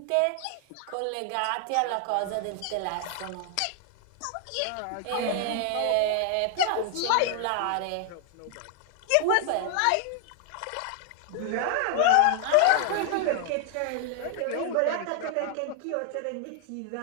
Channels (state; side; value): different; both; correlation 0.00